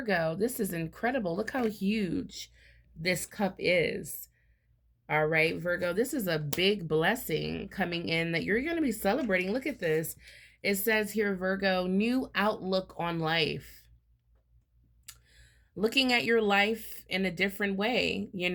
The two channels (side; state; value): both; identical; correlation 1.00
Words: this is incredible. Look how huge this cup is. All right, Virgo, this is a big blessing coming in that you're going to be celebrating. Look at this. It says here, Virgo, new outlook on life. Looking at your life in a different way,